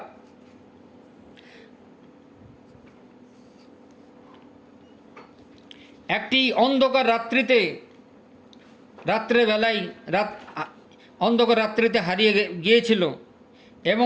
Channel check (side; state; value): both; identical; correlation 1.00